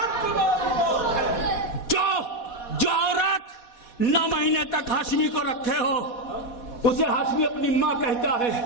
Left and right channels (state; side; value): late; right; 4.1 ms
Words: جو عورت 9 مہینے تک ہاشمی کو رکھے ہو اسے ہاشمی اپنی ماں کہتا ہے.